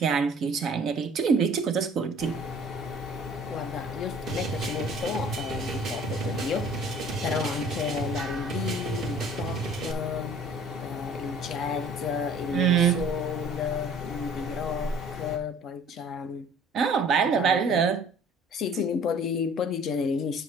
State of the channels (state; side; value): normal; both; correlation 0.52